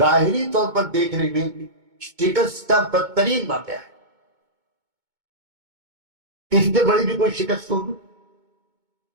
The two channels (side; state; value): left; late; 2.2 ms